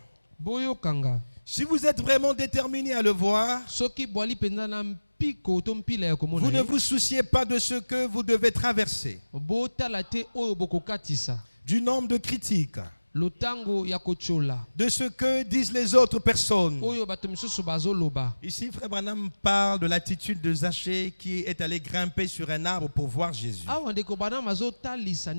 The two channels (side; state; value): both; inverted; correlation -1.00